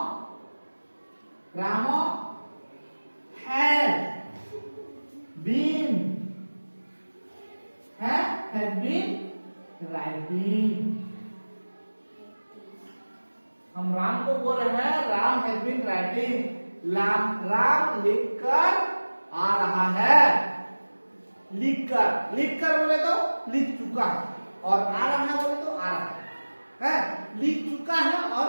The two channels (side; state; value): both; inverted; correlation -1.00